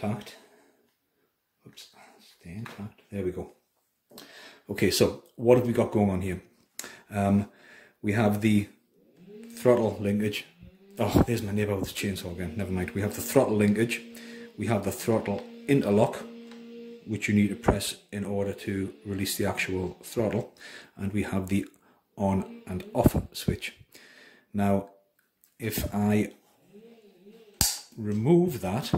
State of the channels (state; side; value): identical; both; correlation 1.00